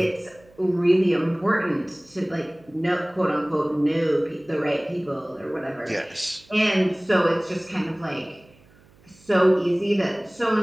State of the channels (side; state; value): right; noise; hum, 29 dB below the sound